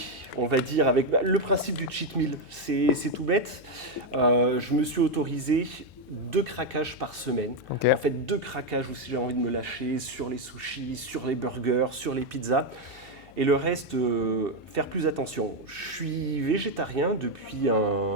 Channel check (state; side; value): noise; left; hum, 23 dB below the sound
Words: on va dire, avec le principe du cheat meal. C'est tout bête. Je me suis autorisé 2 craquages par semaine. Ok. En fait, 2 craquages où si j'ai envie de me lâcher sur les sushis, sur les burgers, sur les pizzas. Et le reste, faire plus attention. Je suis végétarien depuis